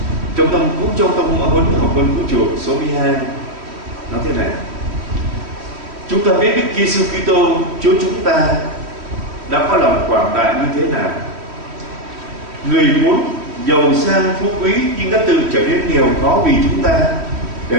Trong tâm huấn học vấn vũ trụ số 12 nói thế này: chúng ta biết Đức Giêsu Kitô Chúa chúng ta đã có lòng quảng đại như thế nào. Người muốn giàu sang phú quý nhưng đã tự trở nên nghèo khó vì chúng ta, để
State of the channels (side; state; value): left; late; 3.1 ms